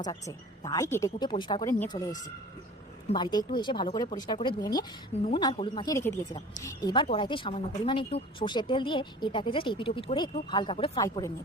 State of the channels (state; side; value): normal; both; correlation 0.42